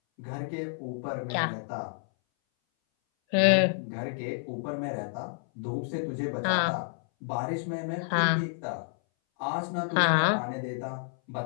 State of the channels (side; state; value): right; silent; 58 dB below the other